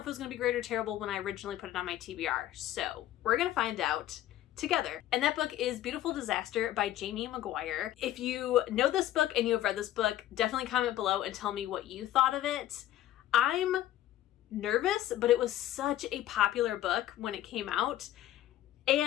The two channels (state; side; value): quieter; right; 13.4 dB